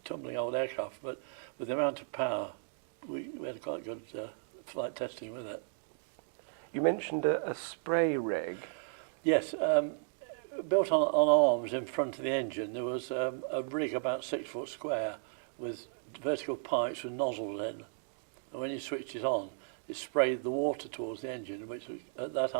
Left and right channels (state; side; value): silent; left; digital silence